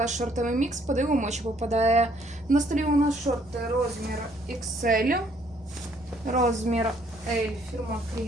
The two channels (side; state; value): left; noise; rumble, 25 dB below the sound